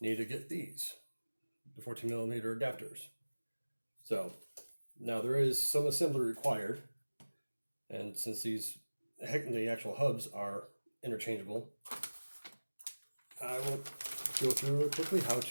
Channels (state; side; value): inverted; both; correlation -1.00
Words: you need to get these, the 14mm adapters. So, now there is some assembly required. And since the actual hubs are interchangeable, I will go through real quickly how